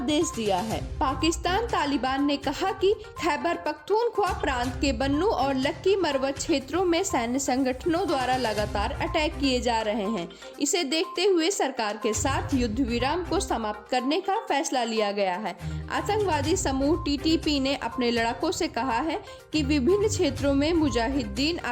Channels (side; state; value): both; identical; correlation 1.00